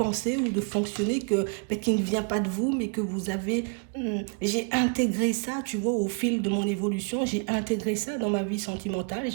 ou de fonctionner qui ne vient pas de vous, mais que vous avez... j'ai intégré ça, tu vois, au fil de mon évolution. J'ai intégré ça dans ma vie sentimentale.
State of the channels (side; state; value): left; quieter; 37.7 dB